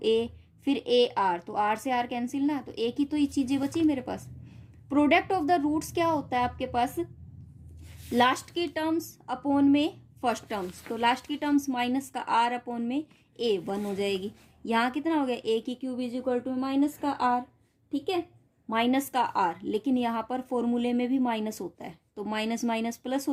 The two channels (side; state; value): both; identical; correlation 1.00